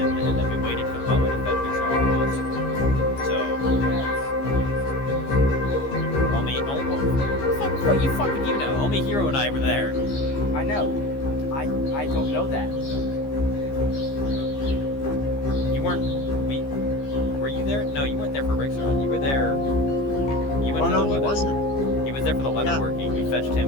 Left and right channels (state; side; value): late; right; 15 ms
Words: then we waited for the butler to fetch Rexaron to us. So, what you know? Only Hero and I were there. I know. I don't know that. You weren't. Were you there? No, you weren't there for Rexaron. You were there. You went Oh to no, the he leather. wasn't. He was there for the leather Yeah. working. We fetched